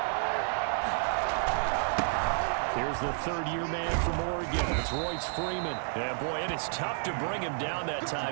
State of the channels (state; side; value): silent; left; digital silence